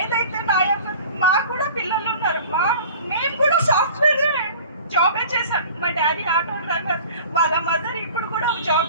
మాకు కూడా పిల్లలు ఉన్నారు. మేము కూడా సాఫ్ట్వేర్ జాబే చేశాం. మా డాడీ ఆటో డ్రైవర్, వాళ్ళ మదర్ ఇప్పుడు కూడా జాబ్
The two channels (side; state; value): both; inverted; correlation -0.43